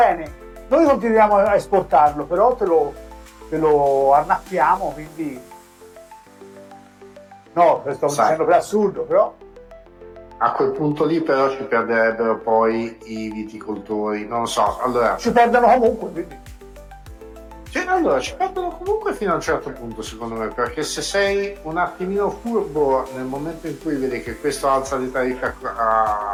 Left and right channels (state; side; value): identical; both; correlation 1.00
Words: noi continuiamo a esportarlo, però te lo annacquiamo, quindi no, sto dicendo per assurdo, però a quel punto lì però ci perderebbero poi i viticoltori, non so, allora ci perdono comunque, quindi allora ci perdono comunque fino a un certo punto, secondo me, perché se sei un attimino furbo nel momento in cui vedi che questo alza le tariffe